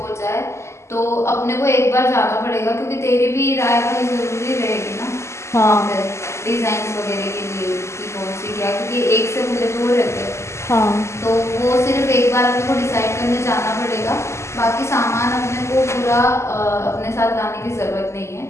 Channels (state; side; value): late; right; 0.13 ms